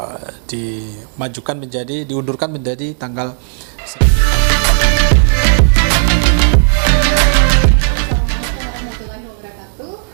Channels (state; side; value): silent; left; digital silence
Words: diundurkan menjadi tanggal